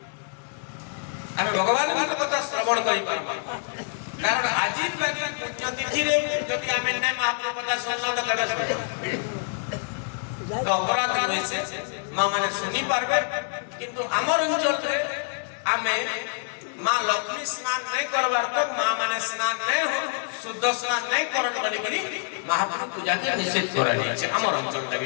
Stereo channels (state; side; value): silent; right; digital silence